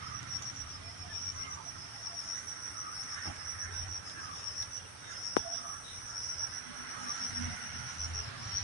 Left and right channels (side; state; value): both; normal; correlation 0.06